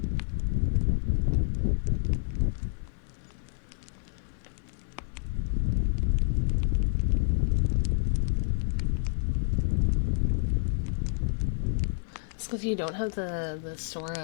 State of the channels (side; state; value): right; silent; digital silence